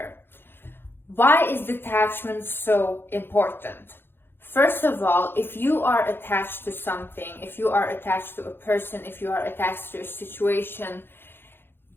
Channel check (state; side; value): late; right; 0.10 ms